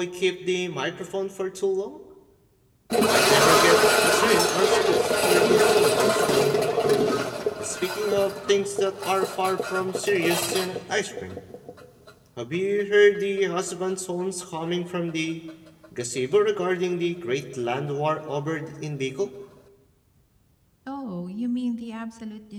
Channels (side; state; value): both; identical; correlation 1.00